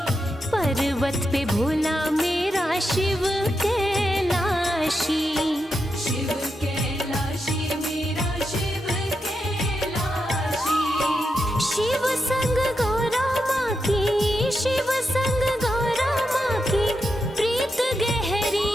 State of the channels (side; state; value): both; normal; correlation 0.86